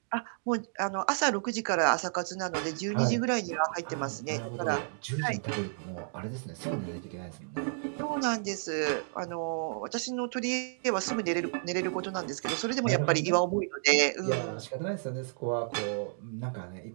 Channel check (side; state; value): left; silent; digital silence